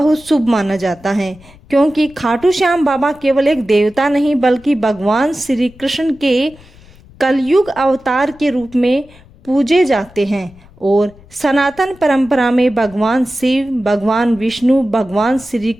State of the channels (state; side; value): noise; left; rumble, 24 dB below the sound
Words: शुभ माना जाता है, क्योंकि खाटू श्याम बाबा केवल एक देवता नहीं बल्कि भगवान श्री कृष्ण के कलयुग अवतार के रूप में पूजे जाते हैं। और सनातन परंपरा में भगवान शिव, भगवान विष्णु, भगवान श्री